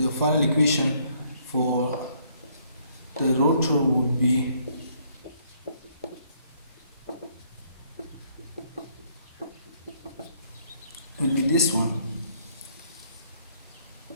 final equation for the rotor would be this one,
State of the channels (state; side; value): inverted; both; correlation -0.67